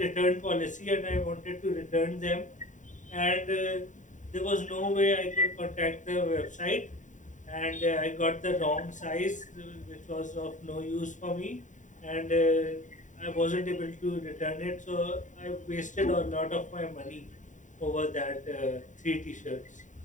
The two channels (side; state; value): right; late; 0.36 ms